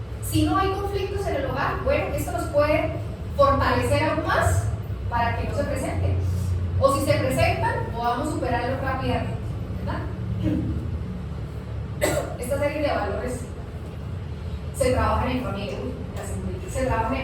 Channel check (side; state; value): both; identical; correlation 1.00